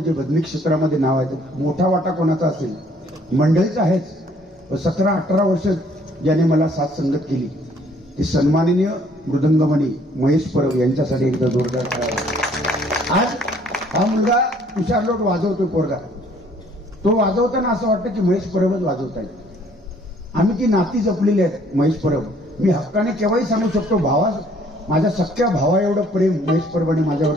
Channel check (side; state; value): both; normal; correlation 0.61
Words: जे बदमी क्षेत्रामध्ये नाव आहे मोठा वाटा कोणाचा असेल मंडळीचा आहेच. 17-18 वर्ष ज्याने मला साथ संगत केली ते सन्माननीय मृदंगमणी महेश परब यांच्यासाठी एकदा जोरदार करावा. आज हा मुलगा तुषार लोट वाजवतोय पोरगा. तो वाजवताना असं वाटतं की महेश परबच वाजवत आहे. आम्ही ती नाती जपलेली आहेत महेश परब. मी हक्काने केव्हाही सांगू शकतो भावा माझ्या सख्या भावा एवढं प्रेम महेश परबाने माझ्यावर